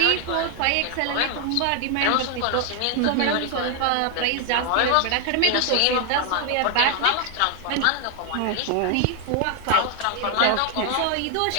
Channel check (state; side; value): different; both; correlation 0.00